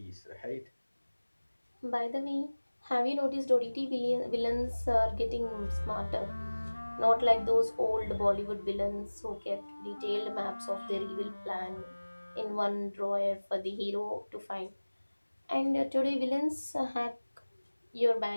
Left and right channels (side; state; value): both; inverted; correlation -1.00